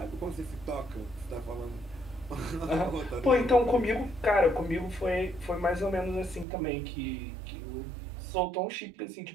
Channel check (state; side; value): drops out; left; at 6.5 s